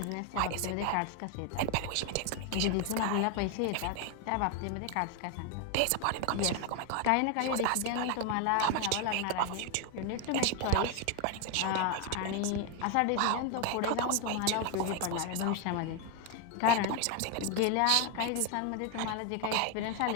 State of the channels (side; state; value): both; different; correlation 0.01